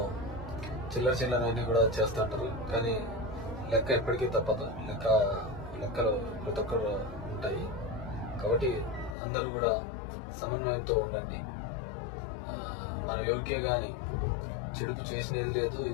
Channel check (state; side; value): drops out; right; at 9.2 s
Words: చిల్లర అన్నీ కూడా చేస్తూ ఉంటారు, కానీ లెక్క ఎప్పటికీ తప్పదు. లెక్కలు ప్రతి ఒక్కరు ఉంటాయి. కాబట్టి అందరూ కూడా సమన్వయంతో ఉండండి. మనం ఎవరికే కానీ చెడుపు చేసినది లేదు,